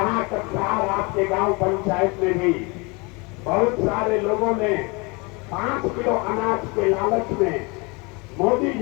कक्षार आपके गांव पंचायत में भी बहुत सारे लोगों ने 5 किलो अनाज के लालच में मोदी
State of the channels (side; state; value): right; quieter; 28.5 dB